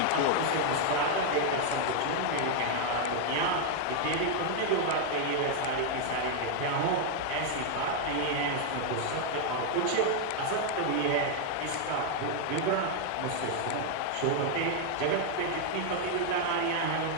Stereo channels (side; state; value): both; different; correlation 0.00